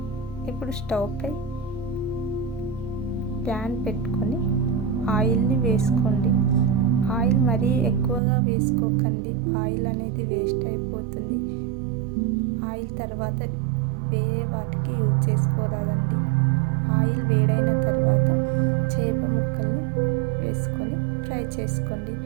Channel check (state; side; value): drops out; left; at 8.2 s